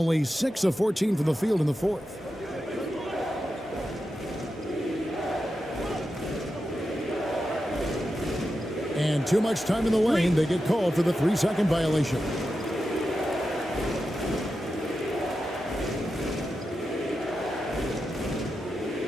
6 of 14 from the field in the fourth. And too much time in the lane. They get called for the 3-second violation.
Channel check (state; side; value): normal; both; correlation 0.90